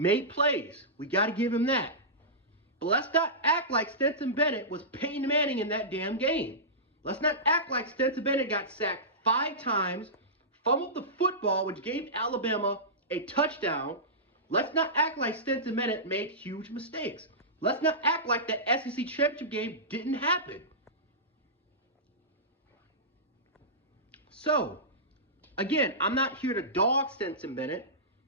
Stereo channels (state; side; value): normal; both; correlation -0.17